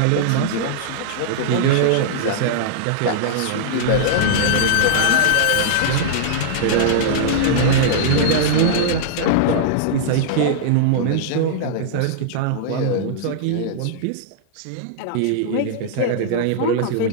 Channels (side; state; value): both; different; correlation -0.02